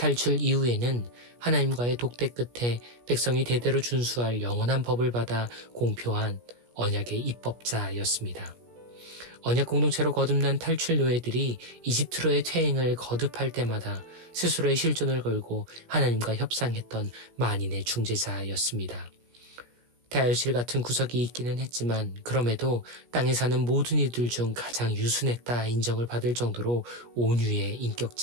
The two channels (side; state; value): left; late; 17 ms